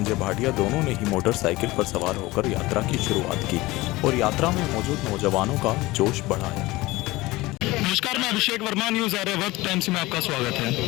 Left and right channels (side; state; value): right; quieter; 20.2 dB